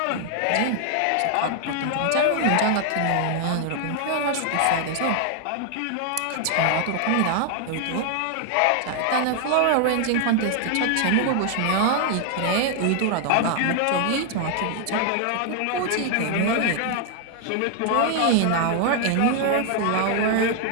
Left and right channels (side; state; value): both; different; correlation 0.00